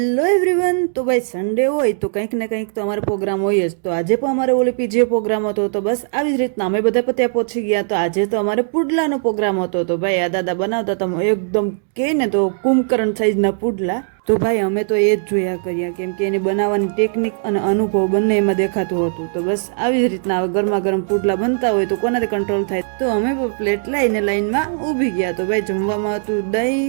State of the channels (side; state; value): left; silent; digital silence